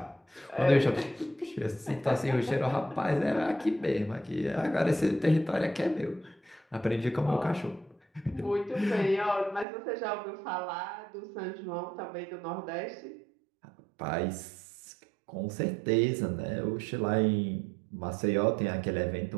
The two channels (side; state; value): left; drops out; at 9.7 s